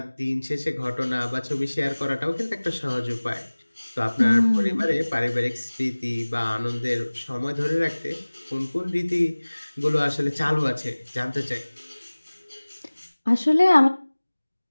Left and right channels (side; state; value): both; inverted; correlation -1.00